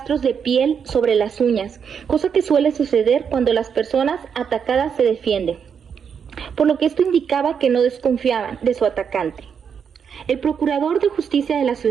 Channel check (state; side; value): quieter; left; 7.1 dB